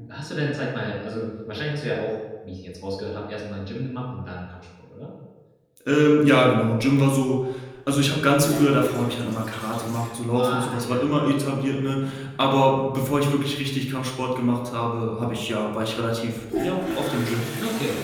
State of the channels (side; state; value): both; identical; correlation 1.00